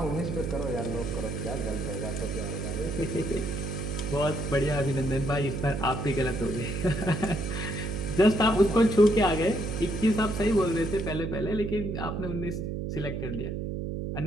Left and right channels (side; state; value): right; noise; hum, 3 dB below the sound